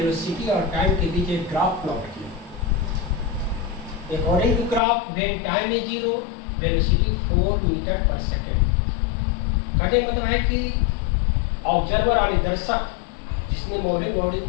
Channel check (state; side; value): drops out; right; at 4.8 s